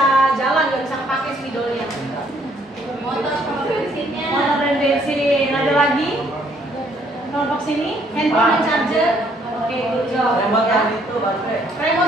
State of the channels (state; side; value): normal; both; correlation 0.66